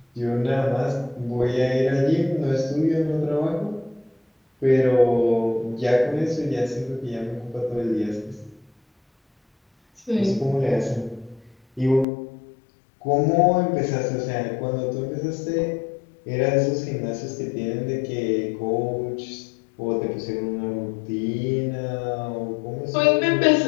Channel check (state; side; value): drops out; right; at 12.1 s